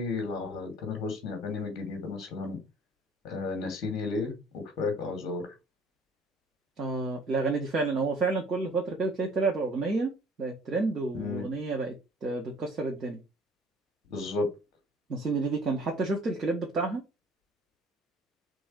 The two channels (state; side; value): normal; both; correlation 0.53